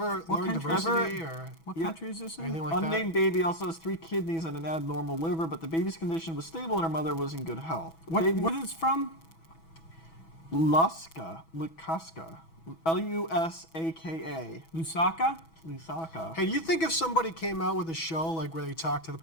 what learn country? diversity or What Yeah. country is this in? anything like that? Unnamed baby also has 3 kidneys and an abnormal liver, but the baby's condition was stable and her mother was in good health. The What, baby what is it from? Luska, Lusaka, Lusaka? Lusaka. Hey, do you think if somebody came out with a show like where they talk to the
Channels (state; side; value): late; right; 6.1 ms